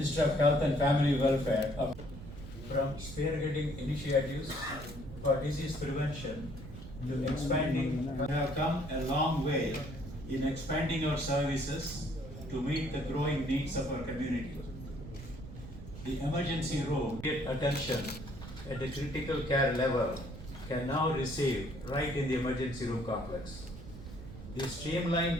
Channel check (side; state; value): right; noise; rumble, 12 dB below the sound